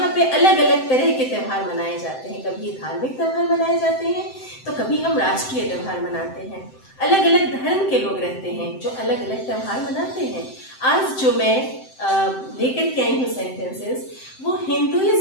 पे अलग अलग तरह के त्यौहार मनाए जाते हैं। कभी धार्मिक त्यौहार मनाए जाते हैं तो कभी हम राष्ट्रीय त्यौहार मनाते हैं। अलग अलग धर्म के लोग रहते हैं जो अलग अलग त्यौहार मनाते हैं। आज जो मैं लेकर के आई हूँ सेंटेंसेस वो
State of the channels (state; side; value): late; right; 7.8 ms